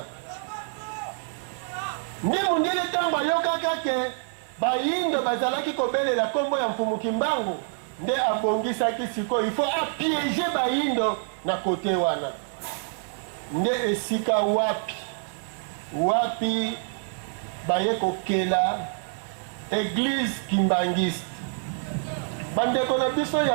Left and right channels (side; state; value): left; silent; digital silence